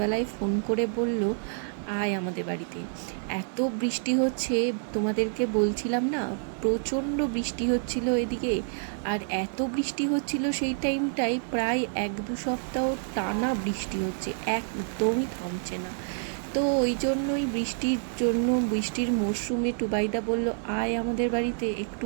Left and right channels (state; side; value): silent; left; 59 dB below the other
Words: ফোন করে বলল, আয় আমাদের বাড়িতে। এত বৃষ্টি হচ্ছে, তোমাদেরকে বলছিলাম না, প্রচণ্ড বৃষ্টি হচ্ছিল এদিকে। আর এত বৃষ্টি হচ্ছিল সেই টাইমটায়, প্রায় 1-2 সপ্তাহ টানা বৃষ্টি হচ্ছে, একদমই থামছে না। তো ওই জন্যই বৃষ্টির মরশুমে টুবাইদা বলল, আয় আমাদের বাড়িতে, একটু